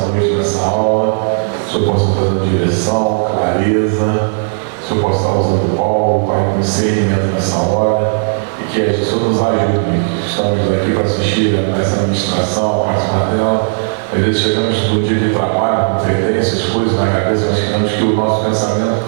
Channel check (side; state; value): left; silent; digital silence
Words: noite, nessa aula, o Senhor possa trazer direção, clareza, o Senhor possa estar usando Paulo, Pai, com discernimento nessa hora, e que o Senhor nos ajude, estamos aqui para assistir a essa ministração, a participar dela. Às vezes chegamos no dia de trabalho, competências, coisas na cabeça, mas queremos que o nosso pensamento